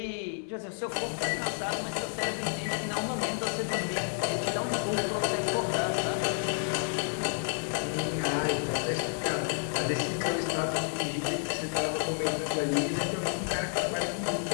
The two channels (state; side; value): silent; right; 58 dB below the other